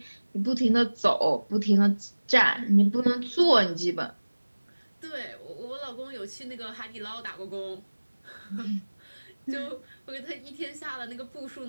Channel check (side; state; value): both; inverted; correlation -1.00